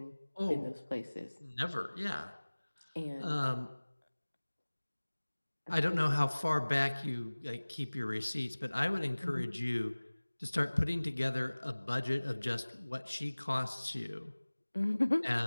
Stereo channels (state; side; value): inverted; both; correlation -1.00